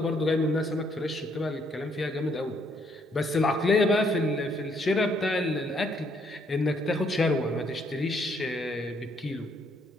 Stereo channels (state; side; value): normal; both; correlation 0.69